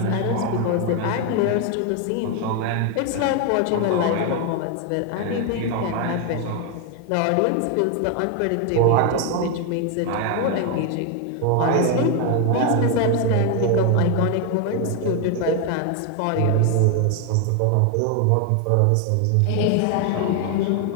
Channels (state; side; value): different; both; correlation 0.01